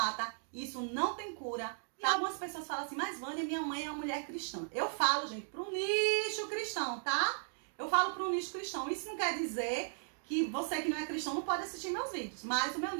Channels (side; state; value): left; silent; digital silence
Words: isso não tem cura. E algumas pessoas falam assim, mas Vânia, minha mãe é uma mulher cristã. Eu falo, gente, para um nicho cristão, tá? Eu falo para um nicho cristão. Isso não quer dizer que você que não é cristão não pode assistir meus vídeos, mas o meu